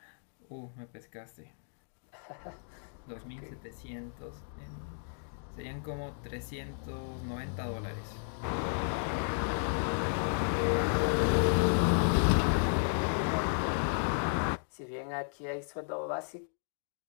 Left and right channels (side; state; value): right; silent; digital silence